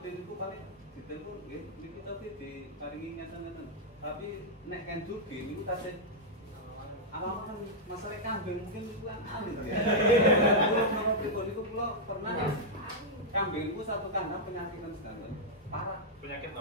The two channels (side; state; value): both; normal; correlation -0.06